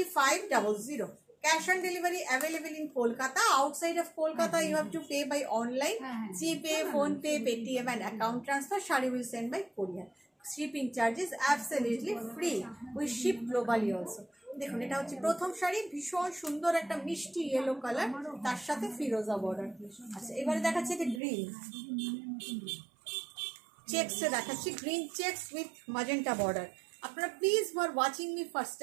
Cash on delivery available in Kolkata. Outside of Kolkata, you have to pay by online, GPay, PhonePe, Paytm and account transfer. Shari will send by courier. Shipping charges absolutely free. We ship globally also. দেখুন এটা হচ্ছে প্রথম শাড়ি, ভীষণ সুন্দর একটা মিষ্টি yellow colour, তার সাথে ফিরোজা বর্ডার। আচ্ছা, এবারে দেখাচ্ছে যে গ্রিন চেকসে দেখাচ্ছি, green checks with magenta border. আপনারা please who are watching me first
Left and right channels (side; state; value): left; drops out; at 21.2 s